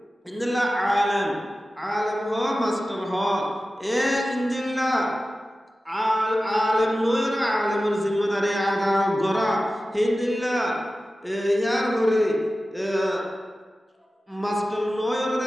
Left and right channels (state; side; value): normal; both; correlation 0.95